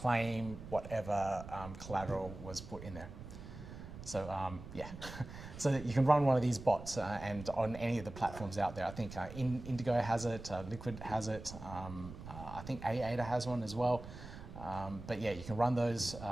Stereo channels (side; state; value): right; noise; rumble, 12 dB below the sound